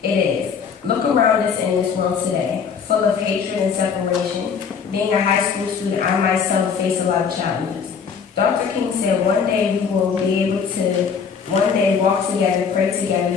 It is. Look around us in this world today, full of hatred and separation. Being a high school student, I myself face a lot of challenges. Dr. King said one day we will be able to walk together, pray together,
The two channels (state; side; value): quieter; right; 6.4 dB